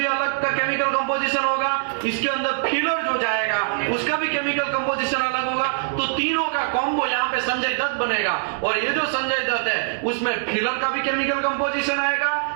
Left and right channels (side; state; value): left; silent; digital silence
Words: अलग का केमिकल कंपोजिशन होगा। इसके अंदर फिलर जो जाएगा उसका भी केमिकल कंपोजिशन अलग होगा। तो तीनों का कॉम्बो यहाँ पे संजय दत्त बनेगा। और ये जो संजय दत्त है उसमें फिलर का भी केमिकल कंपोजिशन